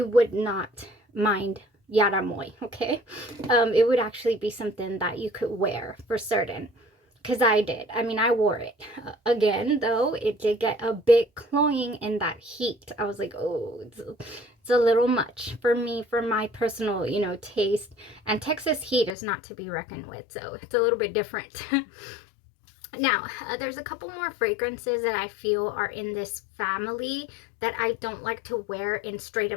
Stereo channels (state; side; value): drops out; right; at 19.2 s